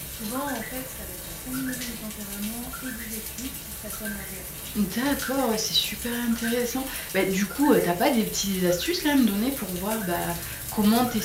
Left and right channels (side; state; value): both; identical; correlation 1.00